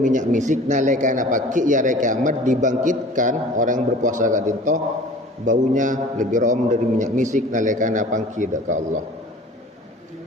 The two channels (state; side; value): normal; both; correlation 0.44